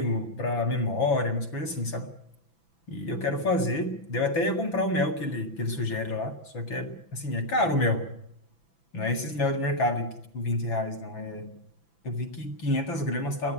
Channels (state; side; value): late; right; 6.0 ms